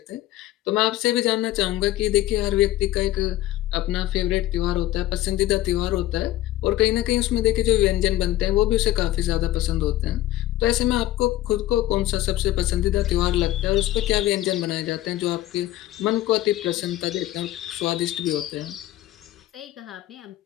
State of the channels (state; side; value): quieter; right; 14.8 dB